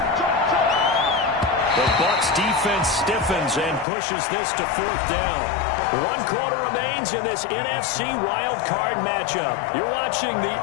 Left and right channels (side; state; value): right; drops out; at 3.9 s